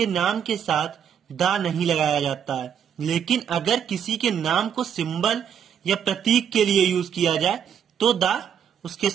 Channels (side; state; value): left; quieter; 8.4 dB